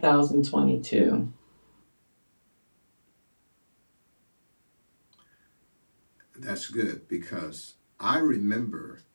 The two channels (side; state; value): both; inverted; correlation -1.00